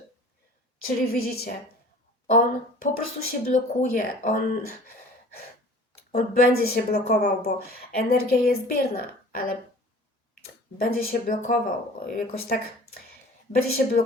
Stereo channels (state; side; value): normal; both; correlation 0.45